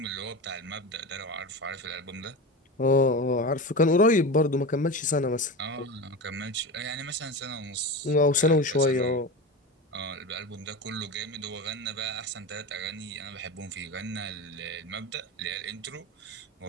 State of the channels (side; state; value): both; normal; correlation 0.25